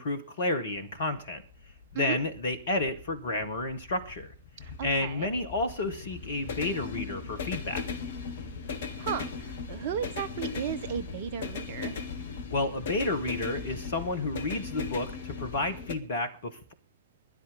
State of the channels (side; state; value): both; inverted; correlation -0.38